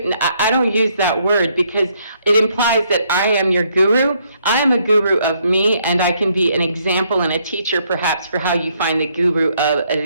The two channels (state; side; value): inverted; both; correlation -0.71